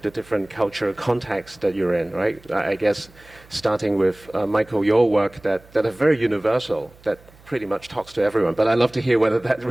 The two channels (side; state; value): right; noise; hum, 26 dB below the sound